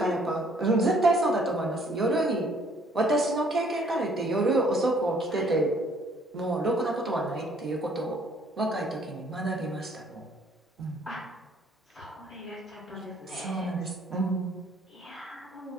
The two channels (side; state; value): both; normal; correlation 0.61